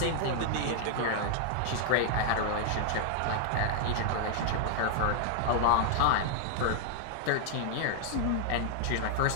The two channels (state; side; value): different; both; correlation 0.00